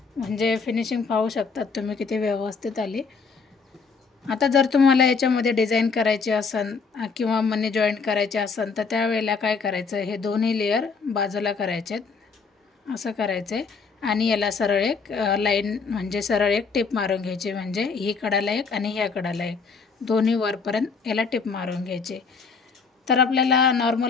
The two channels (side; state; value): right; quieter; 5.0 dB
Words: म्हणजे फिनिशिंग पाहू शकतात तुम्ही किती व्यवस्थित आली. आता जर तुम्हाला याच्यामध्ये डिझाईन करायची असेल किंवा मनी जॉईंट करायचे असेल तर त्यावेळेला काय करायचं, हे दोन्ही लेअर बाजूला करायचे, असं करायचं आहे. आणि याला सरळ एक लाईन म्हणजे सरळ एक टिप मारून घ्यायची, म्हणजे ही कडाला एक आणि ह्या कडाला एक, दोन्ही वरपर्यंत याला टिप मारून घ्यायची. तर आपल्याला